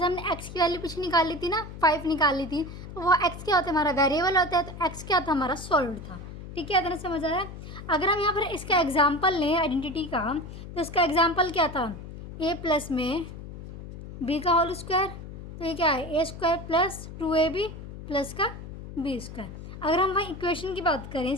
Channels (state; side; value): noise; left; hum, 12 dB below the sound